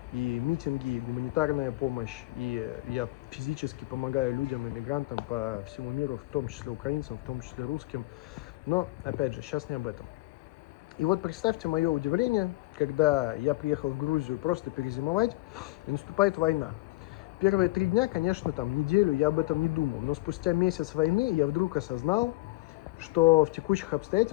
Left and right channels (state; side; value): quieter; right; 21.0 dB